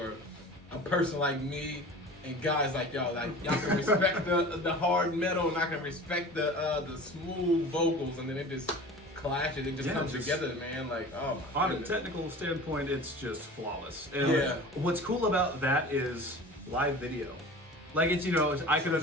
a person like me and guys like y'all. Like y'all can respect the hard metal, and I can respect the smooth vocals, and then it just clashes. It just Yeah, comes just- together, man. Like oh my On a goodness. technical standpoint, it's just flawless. And Yeah. what's cool about that is live video. Like it's, you know, I could True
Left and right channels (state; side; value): normal; both; correlation 0.39